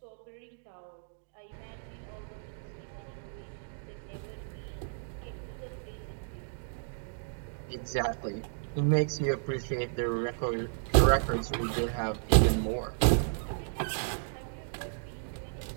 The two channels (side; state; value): left; silent; digital silence